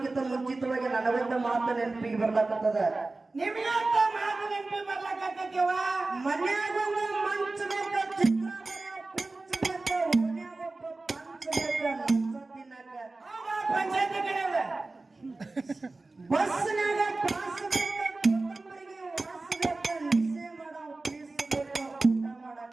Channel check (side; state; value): left; quieter; 3.3 dB